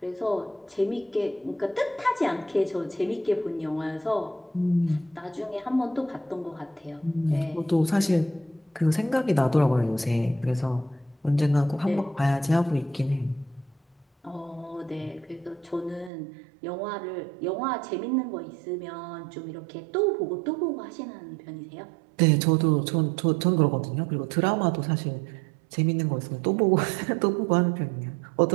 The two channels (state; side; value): drops out; left; at 16.1 s